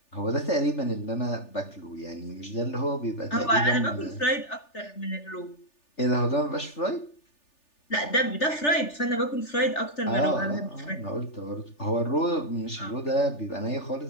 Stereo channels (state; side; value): late; right; 3.4 ms